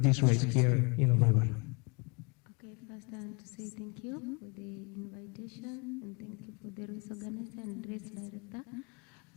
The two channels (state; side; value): quieter; right; 31.6 dB